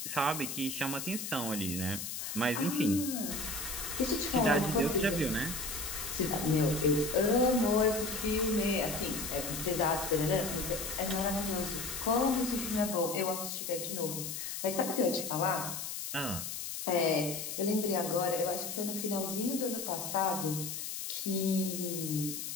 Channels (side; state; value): left; noise; hiss, 5 dB below the sound